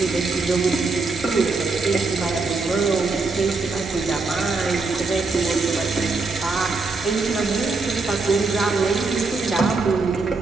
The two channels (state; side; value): quieter; left; 3.9 dB